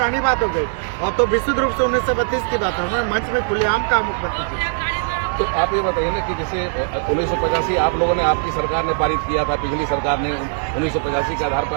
बात हो गई और तो विशुद्ध रूप से 1932 की बात है। मंच में खुलेआम कहा मुख्यमंत्री जी। तो आप ये बताइए ना कि जैसे 1985 आप लोगों ने, आपकी सरकार ने पारित किया था, पिछली सरकार ने 1985 के आधार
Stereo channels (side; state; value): left; silent; digital silence